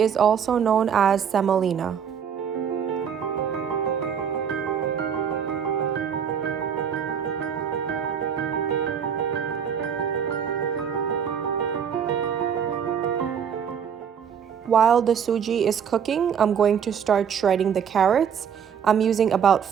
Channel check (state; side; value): quieter; left; 7.7 dB